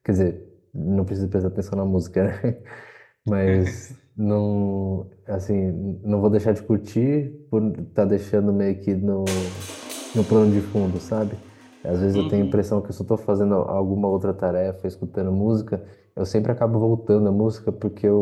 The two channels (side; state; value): both; identical; correlation 1.00